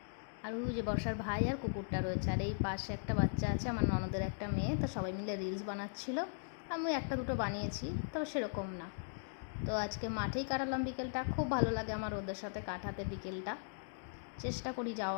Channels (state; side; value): silent; right; digital silence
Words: আর ওই যে বর্ষার ভাই আর কুকুরটা রয়েছে। আর এই পাশে একটা বাচ্চা আছে, আমার ননদের একটা মেয়ে, তো সবাই মিলে রিলস বানাচ্ছিল। আমি একটা দুটো বানিয়েছি, তবে সেরকম না। তো আজকে মাঠেই কাটালাম বিকেলটা। খুব ভালো লাগে আমার ওদের সাথে কাটাতে বিকেলটা। চেষ্টা করি